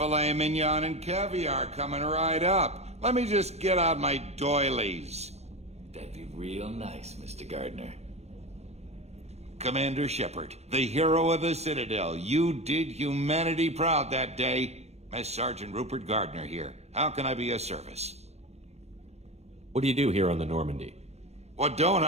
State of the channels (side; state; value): left; late; 0.31 ms